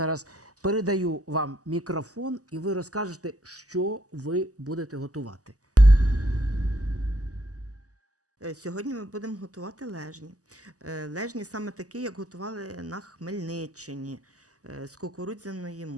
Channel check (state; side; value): late; left; 0.67 ms